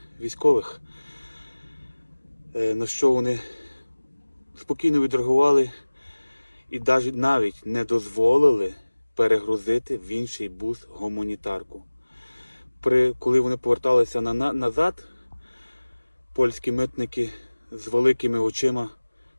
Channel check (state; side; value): inverted; both; correlation -1.00